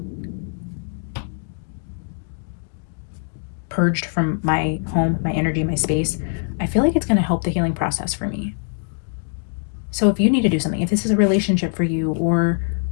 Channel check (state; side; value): silent; right; 64 dB below the other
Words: purged from my home, my energy, my space, I feel like it's going to help the healing process for me. So if you need to do something, if this is a relationship for you, or,